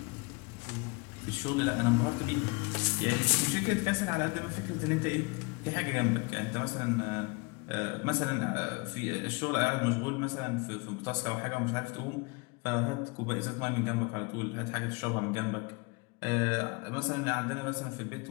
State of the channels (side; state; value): right; quieter; 28.4 dB